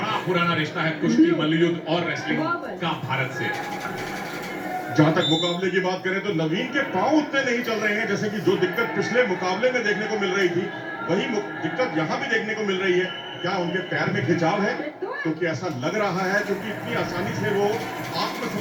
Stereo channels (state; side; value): identical; both; correlation 1.00